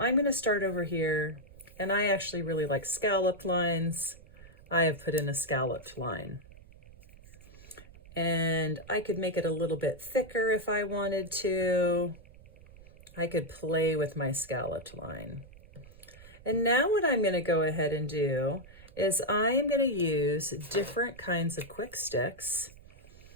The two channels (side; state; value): right; noise; rumble, 21 dB below the sound